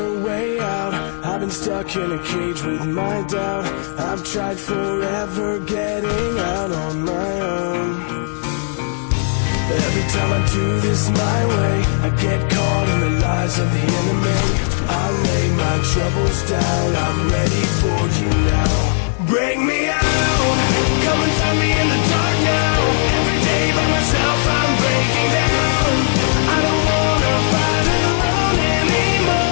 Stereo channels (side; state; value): right; silent; 68 dB below the other